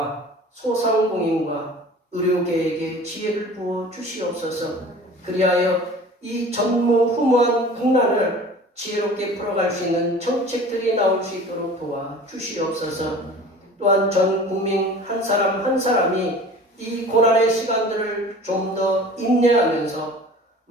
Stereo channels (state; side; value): normal; both; correlation 0.43